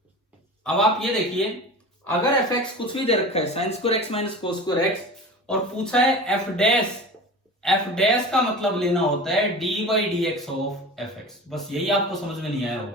अब आप ये देखिए, अगर fx कुछ भी दे रखा है, sin square x minus cos square x, और पूछा है f डैश का मतलब लेना होता है d by dx of fx. बस यही आपको समझ में नहीं आया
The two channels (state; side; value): normal; both; correlation 0.34